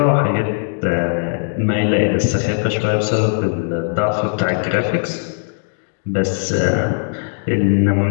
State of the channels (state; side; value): silent; right; digital silence